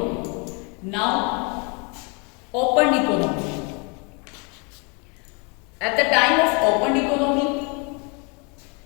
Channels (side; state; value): right; quieter; 33.2 dB